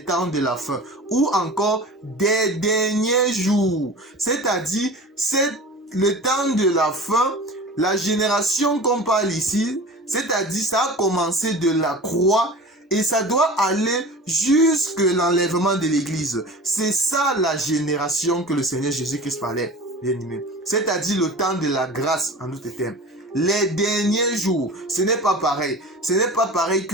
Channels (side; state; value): both; normal; correlation 0.36